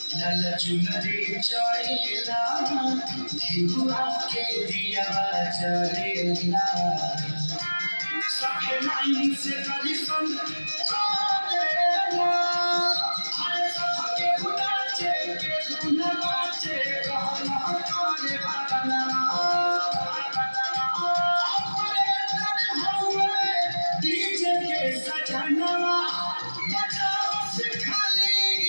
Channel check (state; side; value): inverted; both; correlation -1.00